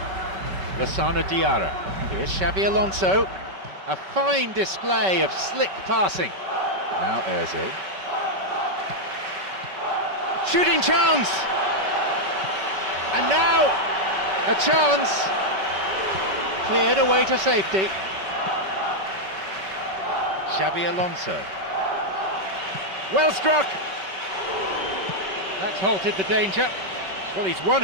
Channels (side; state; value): left; late; 5.3 ms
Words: Lassana Diarra. Here's Xabi Alonso. A fine display of slick passing. Now Ozil. Shooting chance! And now a chance. Cleared away to safety. Xabi Alonso. Well struck! That's halted the danger. Well, he's won